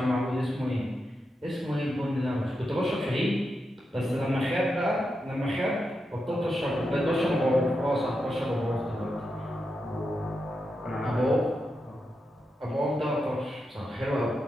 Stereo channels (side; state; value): both; normal; correlation 0.87